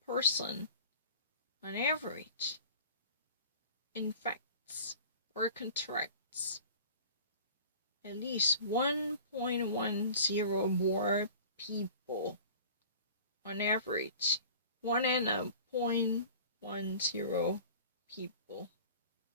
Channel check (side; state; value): both; inverted; correlation -0.42